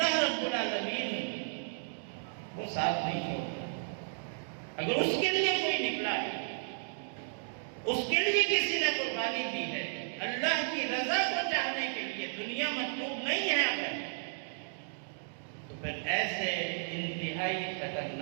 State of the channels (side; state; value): left; silent; digital silence